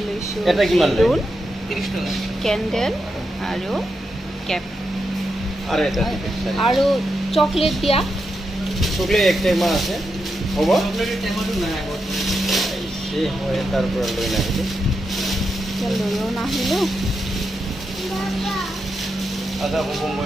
লৈছোঁ বেলুন, কেণ্ডেল আৰু কেপ আৰু চকলেট দিয়া। চকলেট এক টেমা আছে, হ'ব এই মই তাৰ পৰা লৈ নাহিলোঁ, লৈও নাহিলোঁ। আদা হ'ব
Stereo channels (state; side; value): normal; both; correlation 0.85